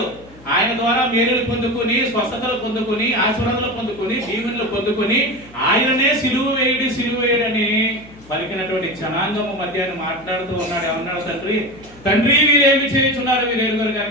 ఆయన ద్వారా మేలులు పొందుకుని, స్వస్థతలు పొందుకుని, ఆశీర్వాదాలు పొందుకుని, దీవెనలు పొందుకుని ఆయననే సిలువ వేయడని పలికినటువంటి జనాంగము మధ్య మాట్లాడుతూ ఉన్నాడు. ఏమన్నాడు? తండ్రి వీరేమి చేయించున్నారు, వీరు ఎరుగురు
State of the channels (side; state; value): left; noise; hum, 24 dB below the sound